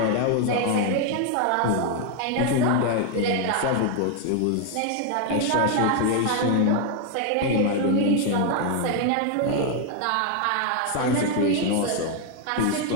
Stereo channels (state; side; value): different; both; correlation 0.00